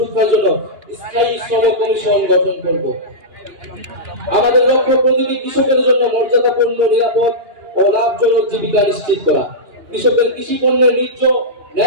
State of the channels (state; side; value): late; left; 2.9 ms